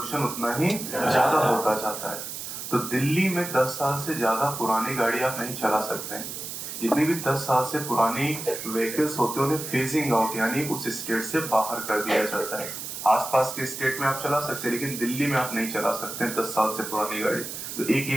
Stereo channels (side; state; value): right; noise; hiss, 7 dB below the sound